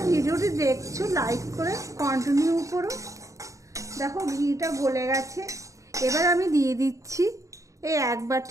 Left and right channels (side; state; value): left; late; 0.16 ms